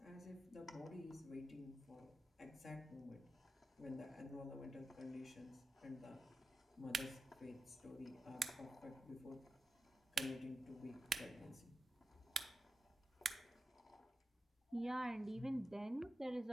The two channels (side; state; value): both; normal; correlation 0.90